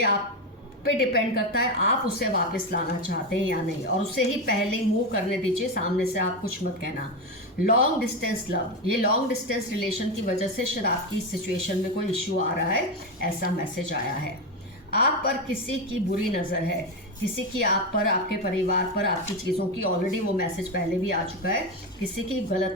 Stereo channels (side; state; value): both; normal; correlation 0.14